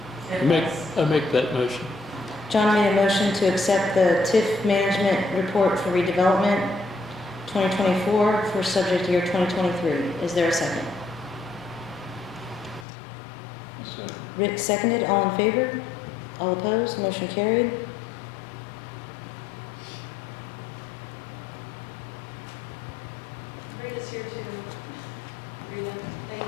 I make that motion. John made a motion to accept the TIF management report for redevelopment 2024 for subject year 2023. Is there a second? So, Rick seconded. All in favor? All opposed? Motion carried. Rita's here too. Rita,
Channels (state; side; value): drops out; right; at 12.9 s